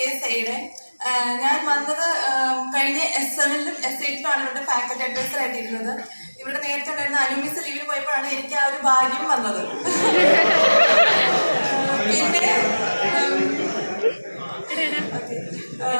ഞാൻ വന്നത് കഴിഞ്ഞ S7-ലും S8-ലുമാണ് ഇവരുടെ ഫാക്കൽറ്റി അഡ്വൈസർ ആയിട്ടിരുന്നത്. ഇവിടെ നേരത്തെ ഉണ്ടായിരുന്ന അനുമിസ് ലീവിന് പോയപ്പോഴാണ് എനിക്ക് ആ ഒരു ഭാഗ്യം വന്നത്.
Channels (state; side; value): inverted; both; correlation -1.00